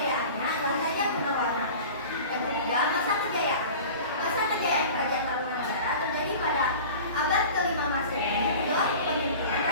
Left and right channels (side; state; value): both; inverted; correlation -0.38